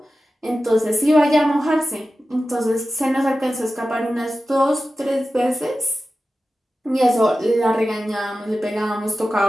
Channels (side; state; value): both; normal; correlation 0.93